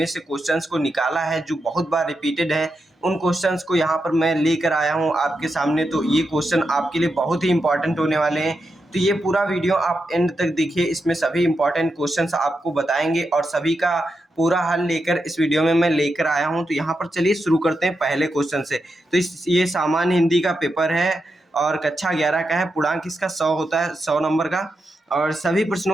से क्वेश्चंस को निकाला है जो बहुत बार रिपीटेड है, उन क्वेश्चंस को यहाँ पर मैं लेकर आया हूँ आपके सामने। तो ये क्वेश्चन आपके लिए बहुत ही इंपॉर्टेंट होने वाले हैं। तो ये पूरा वीडियो आप एंड तक देखिए, इसमें सभी इंपॉर्टेंट क्वेश्चंस आपको बताएंगे और सभी का पूरा हल लेकर इस वीडियो में मैं लेकर आया हूँ। तो यहाँ पर चलिए शुरू करते हैं पहले क्वेश्चन से। तो ये सामान्य हिंदी का पेपर है और कक्षा 11 का है। पूर्णांक इसका 100 होता है, 100 नंबर का, और सभी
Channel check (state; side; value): normal; both; correlation 0.86